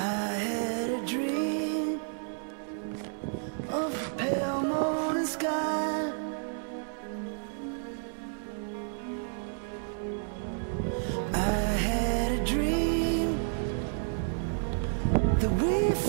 a dream of a pale morning sky. I had a dream that we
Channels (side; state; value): left; silent; 57 dB below the other